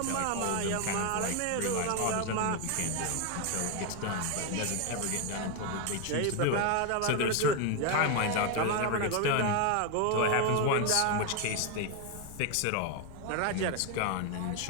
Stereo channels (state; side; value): different; both; correlation 0.01